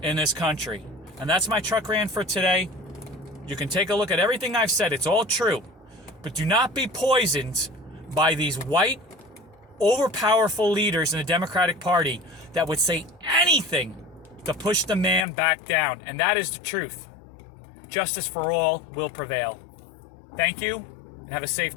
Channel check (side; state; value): right; drops out; at 15.2 s